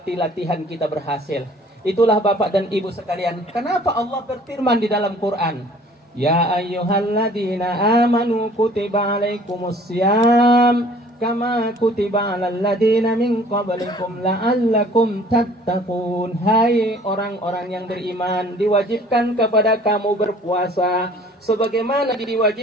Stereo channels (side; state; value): both; normal; correlation 0.53